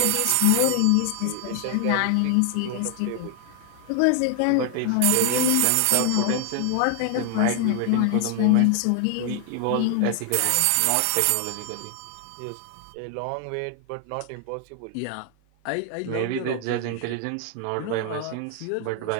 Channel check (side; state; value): both; different; correlation 0.00